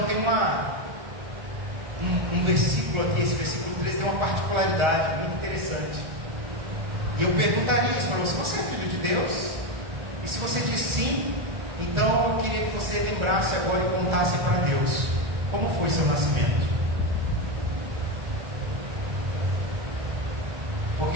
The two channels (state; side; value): late; left; 1.4 ms